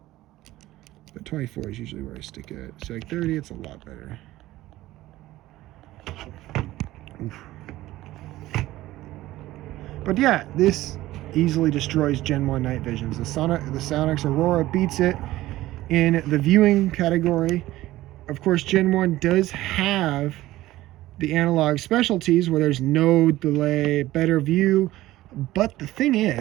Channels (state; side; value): quieter; left; 16.3 dB